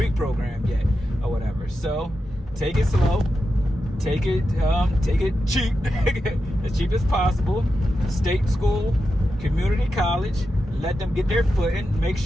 program yet or whatever. So take it slow, take it cheap, as cheap as possible. State school, community college. Let them get their footing, make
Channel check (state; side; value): normal; both; correlation 0.89